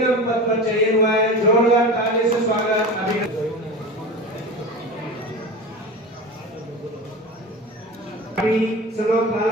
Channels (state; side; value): normal; both; correlation 0.30